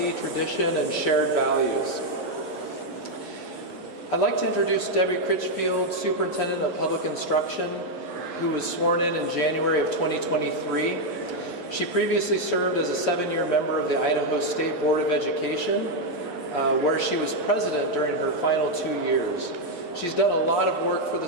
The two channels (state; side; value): late; left; 11 ms